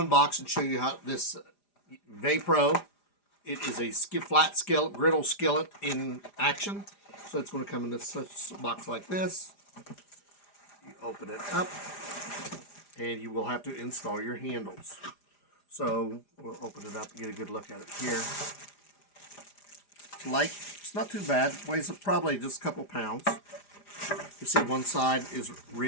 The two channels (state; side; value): late; right; 4.9 ms